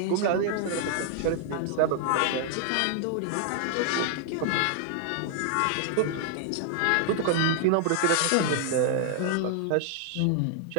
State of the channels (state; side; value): different; both; correlation 0.00